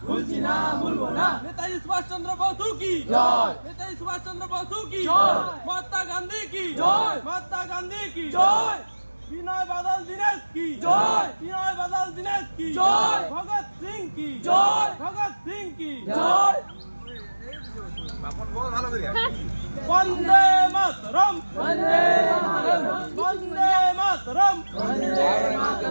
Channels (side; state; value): both; inverted; correlation -1.00